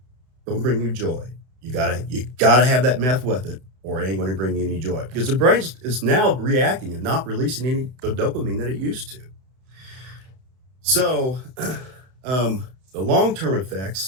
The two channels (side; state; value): left; late; 32 ms